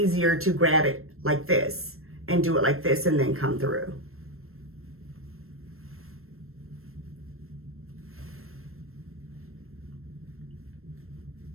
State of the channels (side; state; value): left; late; 0.62 ms